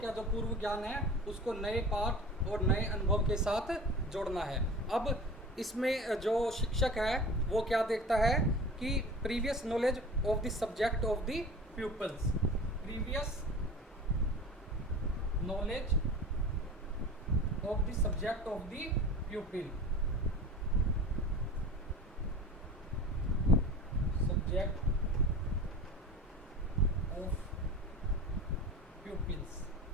जो पूर्व ज्ञान है उसको नए पाठ और नए अनुभव के साथ जोड़ना है. अब इसमें जो शिक्षक है वो क्या देखता है कि previous knowledge of the subject of the people's. Previous knowledge of the subject of the प्यूपिल. Subject of pupils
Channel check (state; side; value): normal; both; correlation 0.37